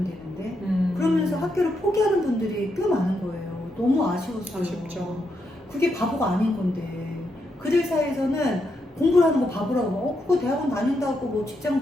되는데. 그러면서 학교를 포기하는 분들이 꽤 많은 거예요. 너무 아쉬웠어요. 아쉽죠. 그게 바보가 아닌 건데. 그들 사이에서는 공부를 하는 거 바보라고. 그거 대학원 다닌다고 뭐 직장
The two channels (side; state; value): both; normal; correlation 0.81